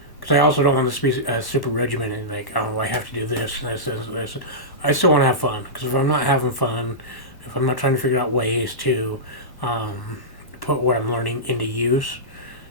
I also don't want this to be super regimented, like, oh, I have to do this and this. I still want to have fun, because if I'm not having fun, if I'm not trying to figure out ways to put what I'm learning into use,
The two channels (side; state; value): right; late; 1.1 ms